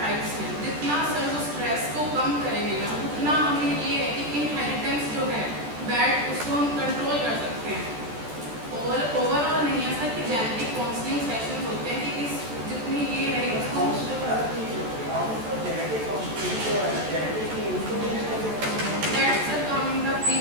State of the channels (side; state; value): left; late; 13 ms